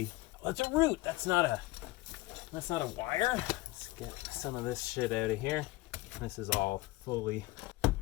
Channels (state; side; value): quieter; right; 19.7 dB